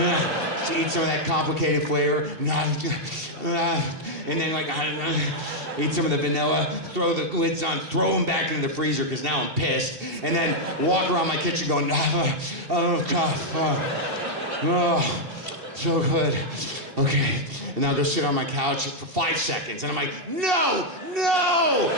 some of that complicated flavor. And then like, eat some of the vanilla, throw the lids on, throw them back into the freezer because now I'm pissed. And then walk around my kitchen going, oh, God, oh, so good. Okay. And I'll go sit on my couch for 5 seconds. And I'm like, no.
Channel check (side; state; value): left; late; 2.7 ms